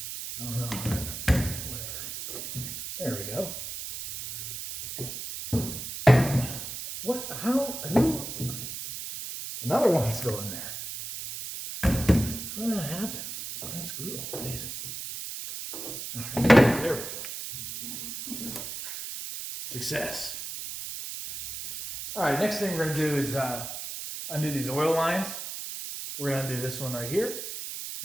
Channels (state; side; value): noise; right; hiss, 7 dB below the sound